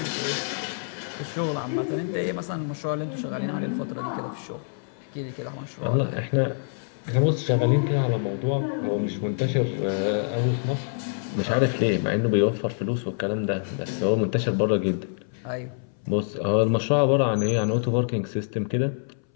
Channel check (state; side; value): silent; right; 61 dB below the other